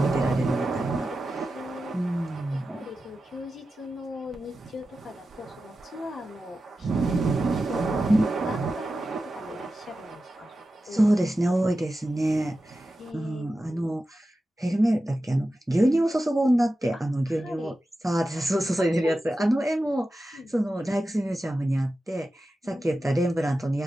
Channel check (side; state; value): both; normal; correlation 0.93